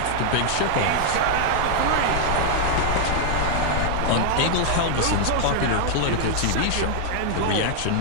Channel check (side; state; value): both; different; correlation 0.00